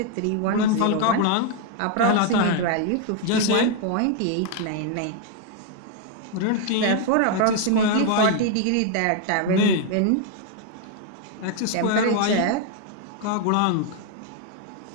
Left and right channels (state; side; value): different; both; correlation 0.00